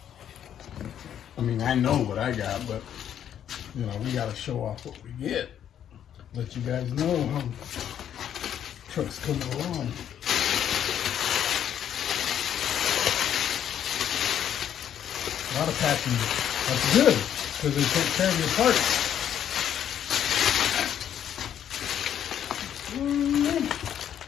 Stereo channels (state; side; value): quieter; right; 9.8 dB